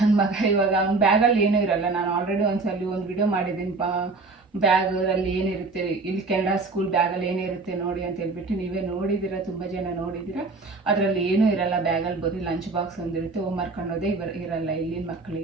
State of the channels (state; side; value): quieter; left; 3.7 dB